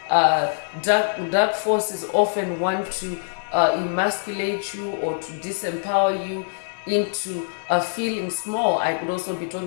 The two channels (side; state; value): right; silent; digital silence